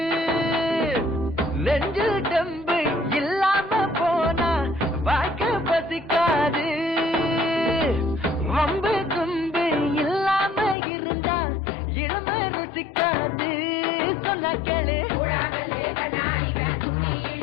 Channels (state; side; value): drops out; right; at 10.8 s